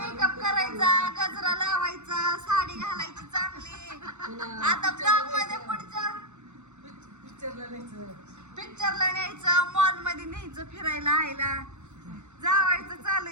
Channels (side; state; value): left; late; 0.83 ms